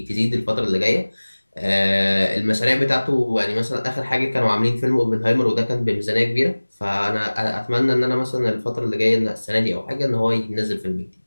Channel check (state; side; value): inverted; both; correlation -1.00